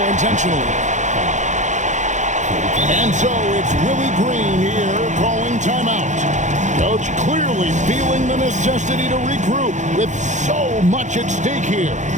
intentionally. And so it's Willie Green here calling timeout. Coach clearly feeling the necessity to regroup with so much at stake here.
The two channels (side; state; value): left; late; 0.35 ms